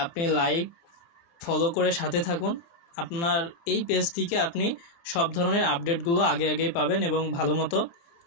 আপনি লাইক ফলো করে সাথে থাকুন। আপনার এই পেজ থেকে আপনি সব ধরনের আপডেটগুলো আগে আগেই পাবেন এবং ভালো মতো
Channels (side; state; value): right; late; 29 ms